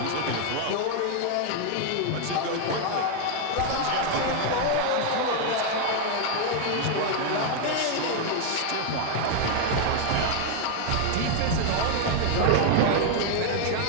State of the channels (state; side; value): different; both; correlation 0.00